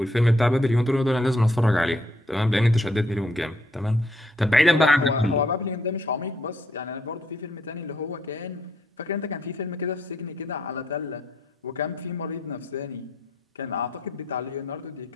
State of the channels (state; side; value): normal; both; correlation 0.71